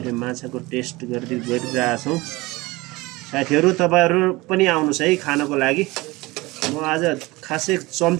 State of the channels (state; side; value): quieter; left; 21.7 dB